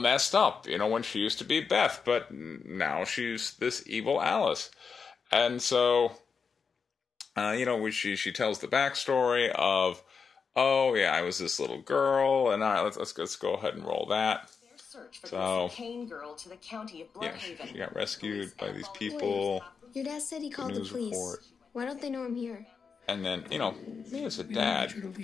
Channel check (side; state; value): right; quieter; 5.7 dB